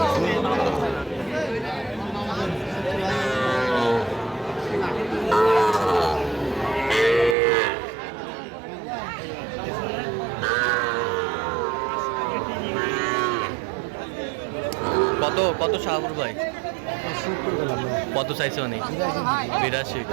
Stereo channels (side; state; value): left; drops out; at 7.4 s